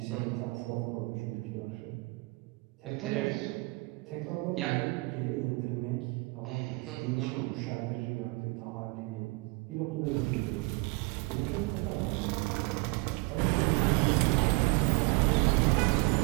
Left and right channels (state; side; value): quieter; left; 25.7 dB